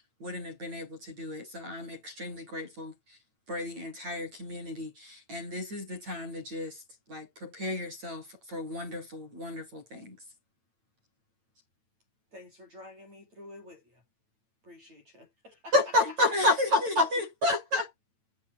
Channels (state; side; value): late; left; 9.0 ms